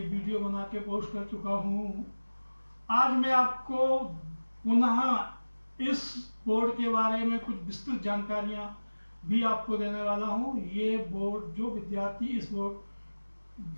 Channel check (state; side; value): inverted; both; correlation -1.00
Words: वीडियो बना के पोस्ट कर चुका हूं। आज मैं आपको पुनः इस बोर्ड के बारे में कुछ विस्तृत जानकारियां भी आपको देने वाला हूं। ये बोर्ड जो